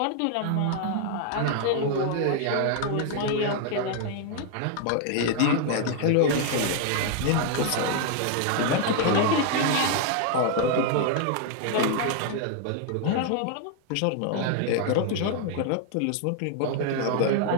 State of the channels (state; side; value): different; both; correlation 0.00